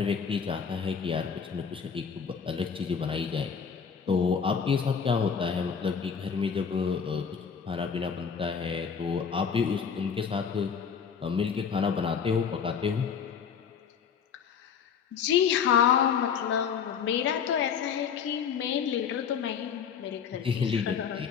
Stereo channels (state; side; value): quieter; right; 6.9 dB